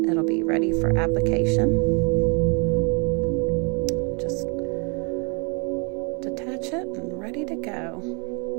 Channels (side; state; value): left; quieter; 34.2 dB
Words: it'll be ready for application. Just detach it and ready to go.